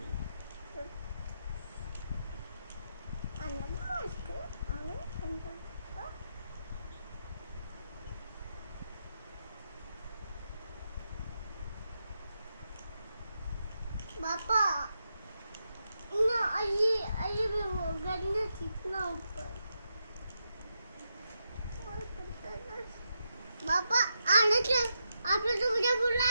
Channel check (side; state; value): both; inverted; correlation -0.85